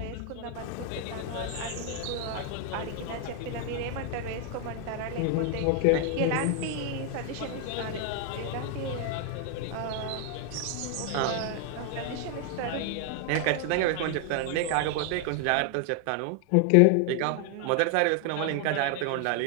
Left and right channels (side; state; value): both; different; correlation 0.00